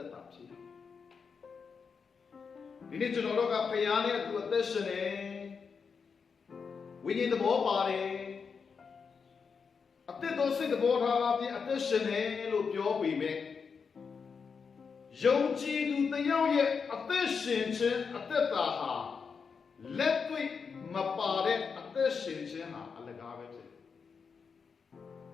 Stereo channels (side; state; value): right; quieter; 5.7 dB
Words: က်တာဖြစ်တယ်ဒီနေ့ကျွန်တော်တို့ကဖယားနဲ့အတူအသက်ရှင်နေဝိညာဉ်သဘောပါတယ်အသက်တော်စိတ်သဘောထားအပြင်အသက်ရှင်နေလို့ပြောပေမဲ့ယုံကြည်သူတယောက်ရဲ့အသက်ရှင်ခြင်းအသက်တာဟာလက်တွေ့မပါတဲ့အသက်ရှင်ခြင်းဟာအလကားပဲဖြစ်တယ်